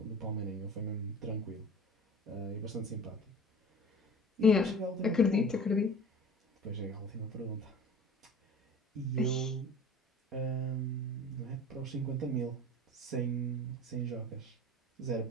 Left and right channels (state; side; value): normal; both; correlation 0.40